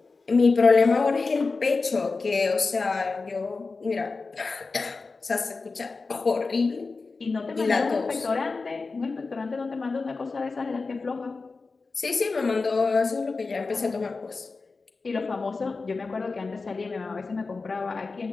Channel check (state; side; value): quieter; right; 4.1 dB